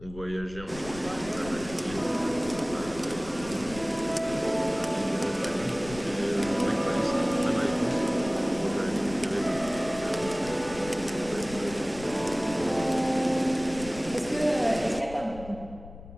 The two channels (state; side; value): noise; left; rumble, 15 dB below the sound